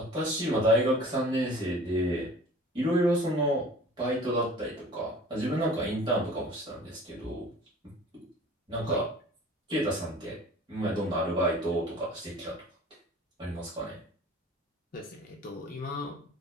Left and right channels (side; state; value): both; normal; correlation 0.45